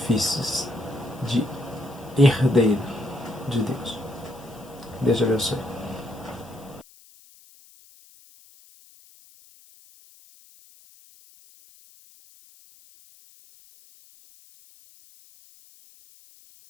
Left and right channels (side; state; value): left; noise; hiss, 25 dB below the sound